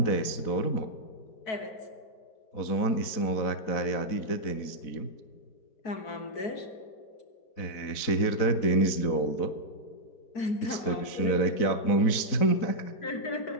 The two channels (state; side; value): late; right; 4.1 ms